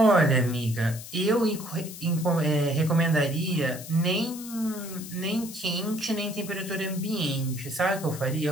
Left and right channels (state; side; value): noise; left; hiss, 13 dB below the sound